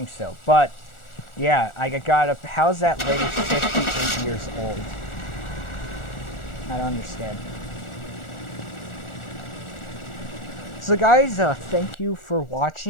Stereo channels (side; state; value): right; late; 1.4 ms